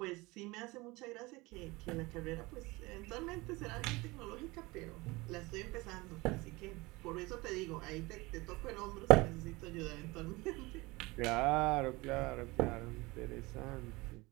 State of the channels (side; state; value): left; quieter; 22.9 dB